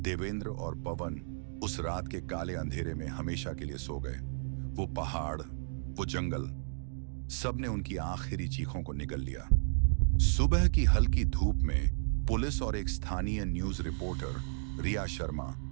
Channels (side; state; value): left; silent; digital silence